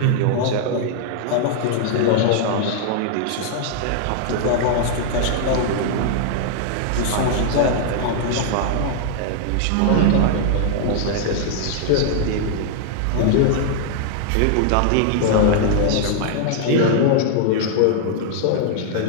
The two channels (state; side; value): different; both; correlation 0.00